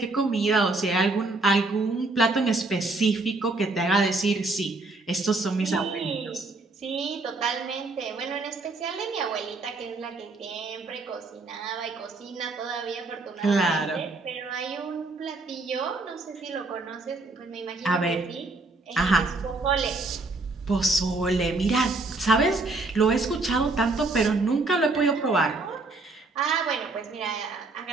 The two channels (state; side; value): quieter; left; 3.3 dB